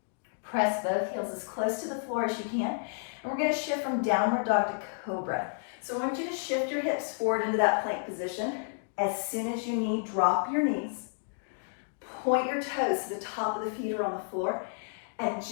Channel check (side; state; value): right; silent; digital silence